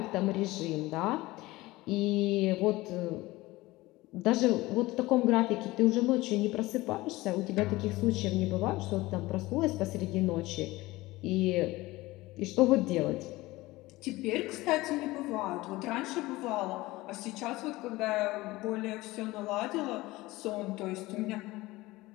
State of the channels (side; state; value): right; quieter; 19.6 dB